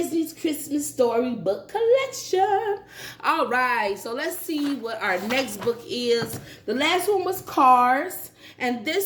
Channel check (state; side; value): identical; both; correlation 1.00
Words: Christmas Storybook collection. All right, so let's see what our next book is. The last one was Cars, and